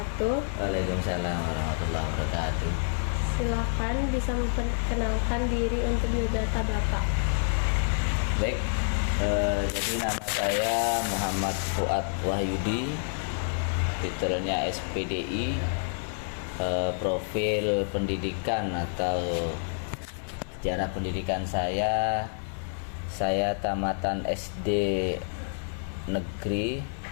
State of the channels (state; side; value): silent; right; 59 dB below the other